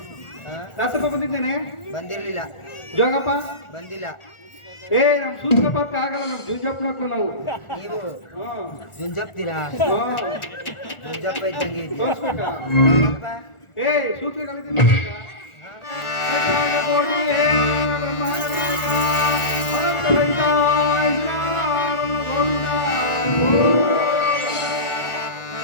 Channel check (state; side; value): late; right; 1.4 ms